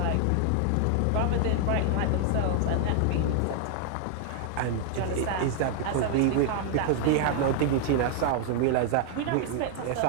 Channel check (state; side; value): different; both; correlation 0.00